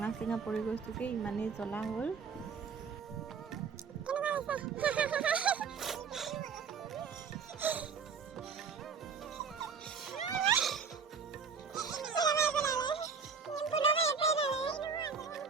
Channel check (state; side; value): quieter; left; 5.8 dB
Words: চিঙা পৰি গৈছোঁগৈ, ইমানেই জ্বলা হ'ল।